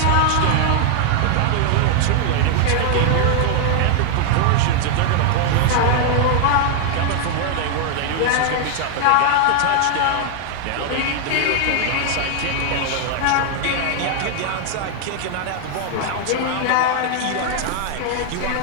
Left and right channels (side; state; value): both; different; correlation 0.00